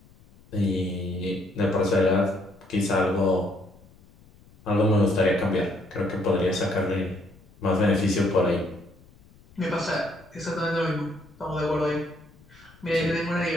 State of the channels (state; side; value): noise; left; rumble, 26 dB below the sound